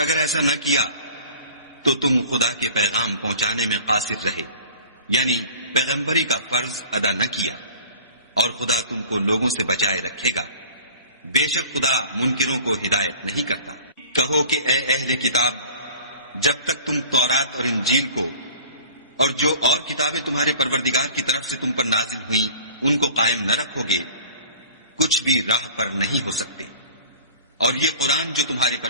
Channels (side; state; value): both; inverted; correlation -0.44